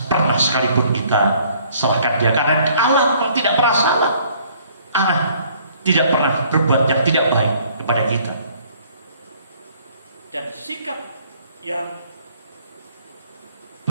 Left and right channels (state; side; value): inverted; both; correlation -0.59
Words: pernah sekalipun kita salahkan Dia, karena Allah memang tidak pernah salah. Allah tidak pernah berbuat yang tidak baik kepada kita. Dan sikap yang